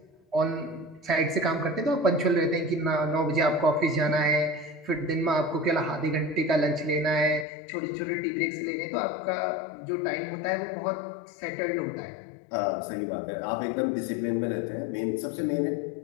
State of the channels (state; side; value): drops out; right; at 7.5 s